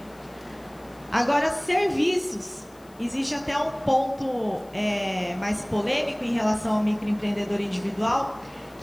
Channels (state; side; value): noise; left; hiss, 28 dB below the sound